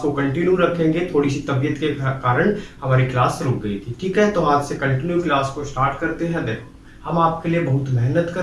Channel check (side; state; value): both; identical; correlation 1.00